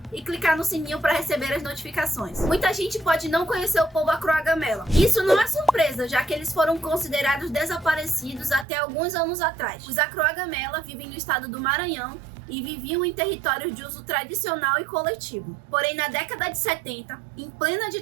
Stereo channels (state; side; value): drops out; left; at 8.7 s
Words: e clicar no sininho para receber as notificações. Muita gente pode não conhecer o povo Croa Gamela. Isso não é surpresa, já que eles foram considerados desaparecidos até alguns anos atrás. Os Croa Gamela vivem no estado do Maranhão e viviam em territórios de uso tradicional e coletivo. Porém, na década de 70, em plena